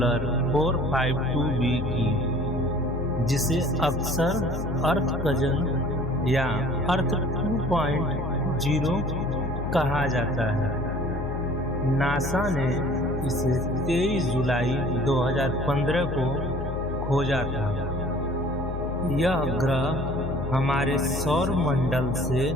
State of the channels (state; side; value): noise; left; hum, 6 dB below the sound